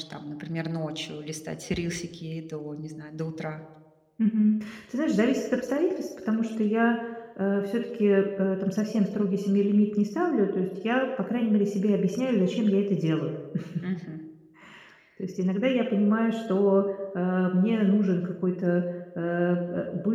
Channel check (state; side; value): identical; both; correlation 1.00